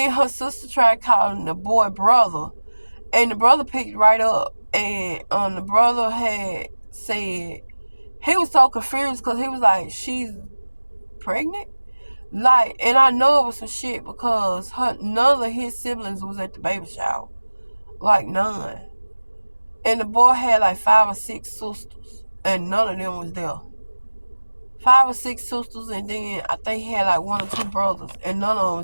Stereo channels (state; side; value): inverted; both; correlation -1.00